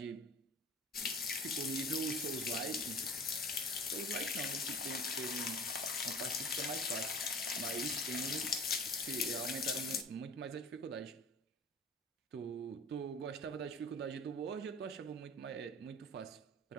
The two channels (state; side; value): normal; both; correlation 0.41